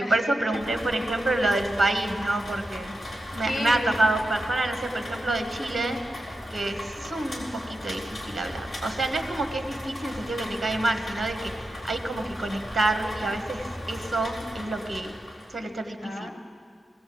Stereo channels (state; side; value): normal; both; correlation 0.89